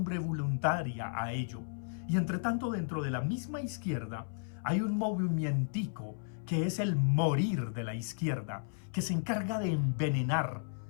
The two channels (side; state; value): right; silent; 55 dB below the other